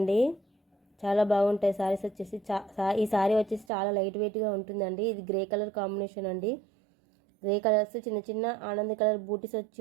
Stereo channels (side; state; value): left; drops out; at 3.7 s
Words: చాలా బాగుంటాయి సారీస్ వచ్చేసి. ఈ సారీ వచ్చేసి చాలా లైట్ వెయిట్గా ఉంటుందండి. ఇది గ్రే కలర్ కాంబినేషన్ అండి. గ్రే కలర్స్ చిన్న చిన్న ఆనంద కలర్ బూటీస్ వచ్చి